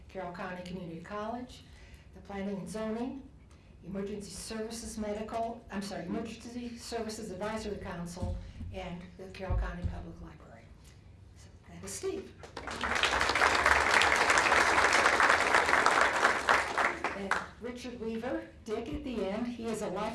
Carroll County Community College, the Planning and Zoning, Emergency Services Advisory Council, and the Carroll County Public Library. So that is Steve. And Richard Weaver, Dick at the end. He is a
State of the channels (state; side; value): identical; both; correlation 1.00